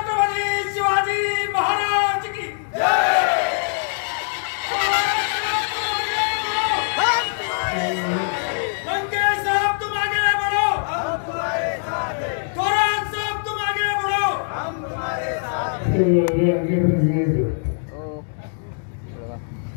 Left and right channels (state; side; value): silent; right; digital silence